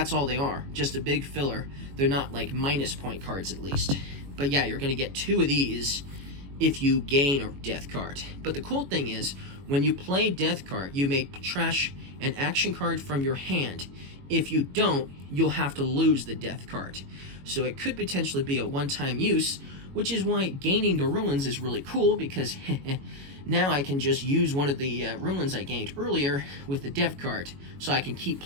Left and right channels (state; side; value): late; left; 22 ms